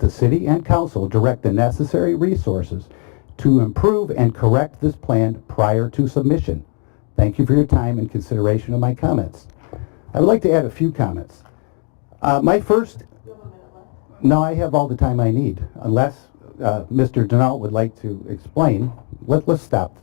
city and council direct the necessary resources to improve and correct this plan prior to submission. Thank you for your time and consideration of my comments. I would like to add a few comments. My first... No, I have all the time I need, unless Mr. Denault would like to explain. Let's stop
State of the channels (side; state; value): right; quieter; 39.2 dB